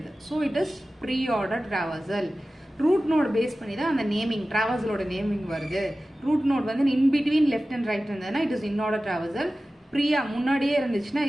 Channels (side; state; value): both; normal; correlation 0.96